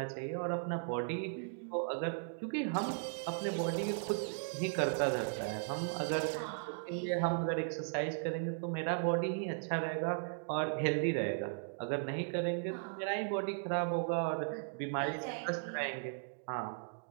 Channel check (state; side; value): silent; left; digital silence